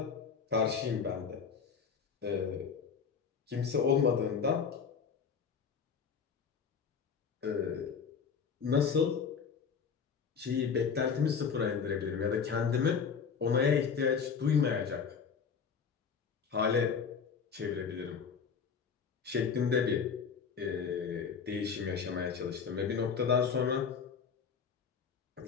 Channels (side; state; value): right; quieter; 6.3 dB